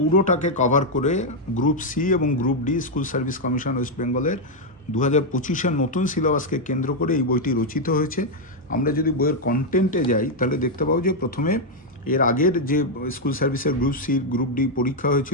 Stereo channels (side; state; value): both; normal; correlation 0.00